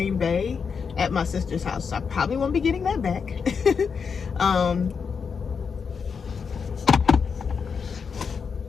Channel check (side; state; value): right; quieter; 6.0 dB